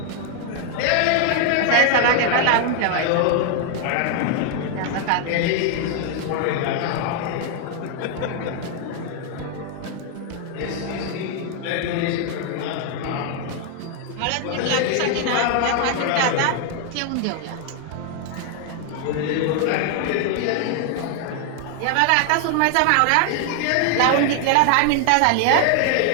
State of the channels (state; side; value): different; both; correlation 0.00